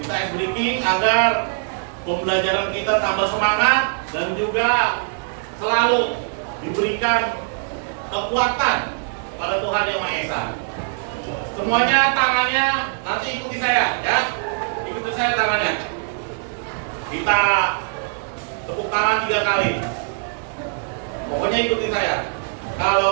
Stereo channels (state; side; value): silent; left; 60 dB below the other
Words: ice breaking agar pembelajaran kita tambah semangat dan juga selalu diberikan kekuatan pada Tuhan Yang Maha Esa. Semuanya tangannya nanti ikuti saya, ya. Ikuti saya tangannya. Kita tepuk tangan 3 kali. Pokoknya ikuti saya.